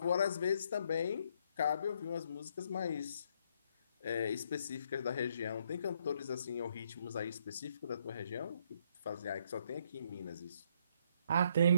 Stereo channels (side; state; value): both; inverted; correlation -0.70